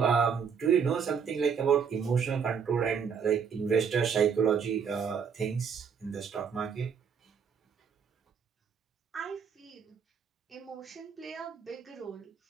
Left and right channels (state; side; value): quieter; left; 6.7 dB